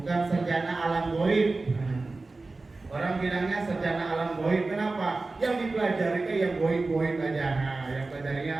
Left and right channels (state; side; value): quieter; left; 3.5 dB